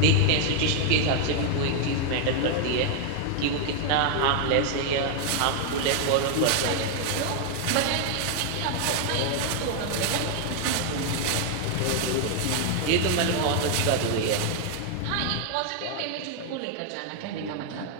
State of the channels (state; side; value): different; both; correlation 0.00